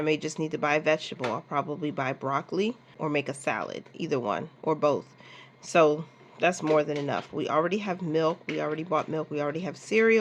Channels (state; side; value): identical; both; correlation 1.00